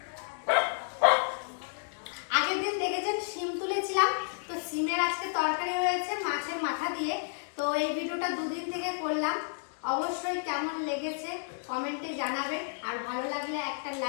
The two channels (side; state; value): right; silent; digital silence